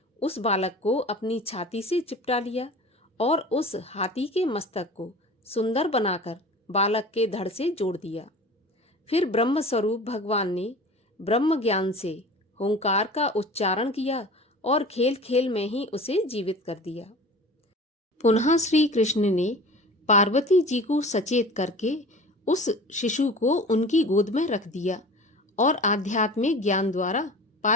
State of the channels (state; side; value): normal; both; correlation 0.39